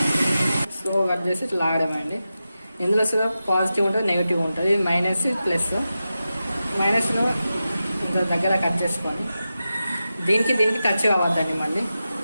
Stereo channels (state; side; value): inverted; both; correlation -0.92